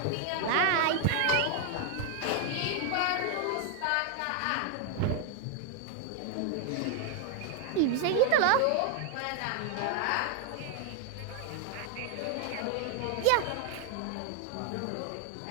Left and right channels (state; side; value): different; both; correlation 0.00